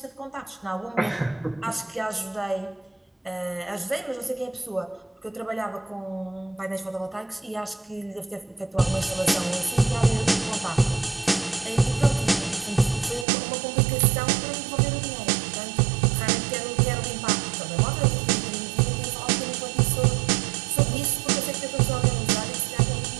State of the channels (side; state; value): left; drops out; at 13.2 s